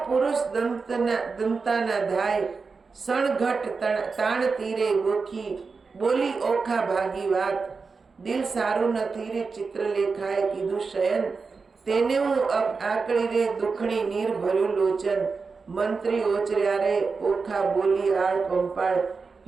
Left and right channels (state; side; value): quieter; left; 4.7 dB